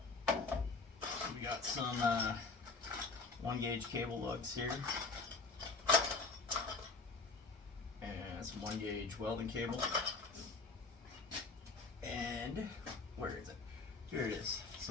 got some 1-gauge cable lugs here. And some 1-gauge welding cable. And where is it? Here it is.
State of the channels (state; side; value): quieter; right; 4.0 dB